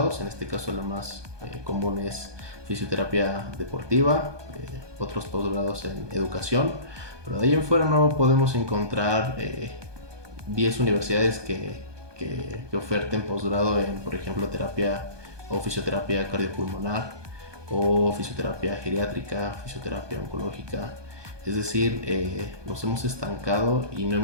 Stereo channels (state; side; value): late; left; 1.2 ms